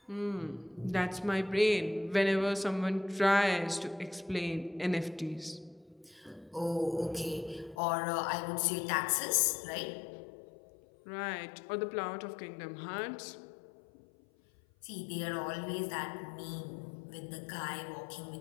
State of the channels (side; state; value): right; drops out; at 7.8 s